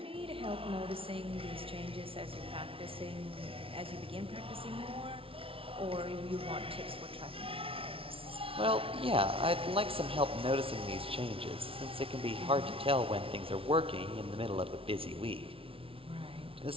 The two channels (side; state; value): left; late; 0.26 ms